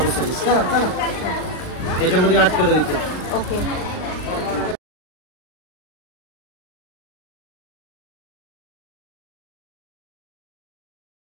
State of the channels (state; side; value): late; right; 39 ms